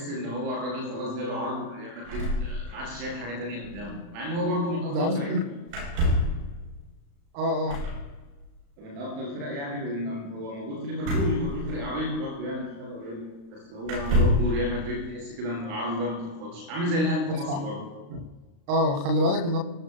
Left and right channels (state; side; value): late; left; 35 ms